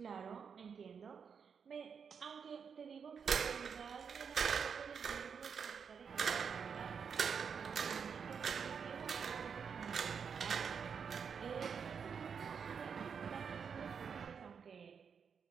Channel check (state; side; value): quieter; left; 6.5 dB